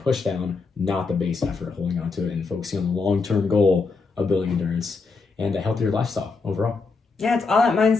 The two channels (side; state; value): right; quieter; 4.3 dB